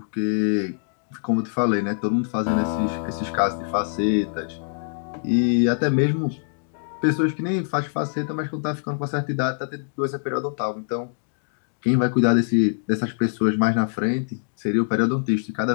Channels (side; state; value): right; silent; digital silence